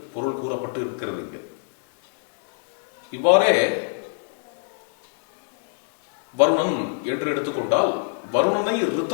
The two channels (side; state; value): right; silent; digital silence